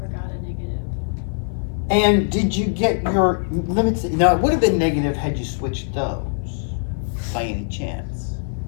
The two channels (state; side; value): silent; right; 57 dB below the other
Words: a negative. And did you get your limits? Now, it would have been negative had you switched those by any chance.